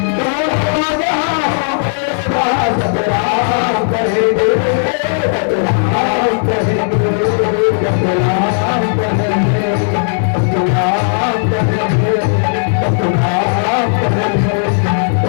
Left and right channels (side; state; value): right; silent; digital silence